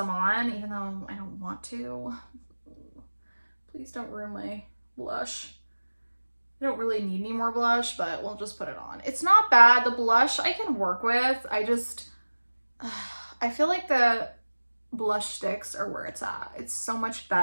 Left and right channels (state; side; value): inverted; both; correlation -1.00